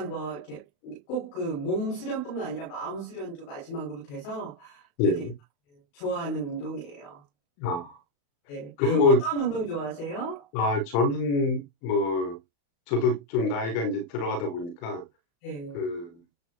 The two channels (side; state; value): right; late; 35 ms